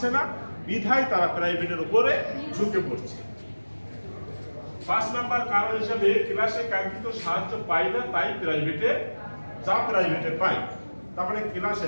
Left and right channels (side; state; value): both; inverted; correlation -1.00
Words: না, বিধায় তারা প্রাইভেটের উপরে ঝুঁকে পড়ছে। 5 নাম্বার কারণ হিসেবে ক্লাসে কাঙ্ক্ষিত সাহায্য পায় না, তাই প্রাইভেটে পায়। তার মানে ক্লাসে